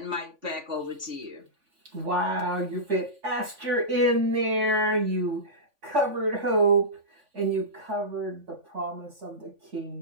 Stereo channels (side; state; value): left; late; 3.5 ms